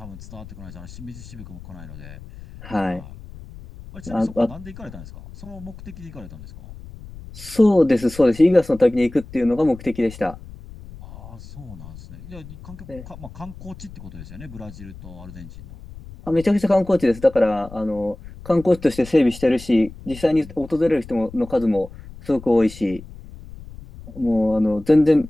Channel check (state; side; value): noise; left; rumble, 16 dB below the sound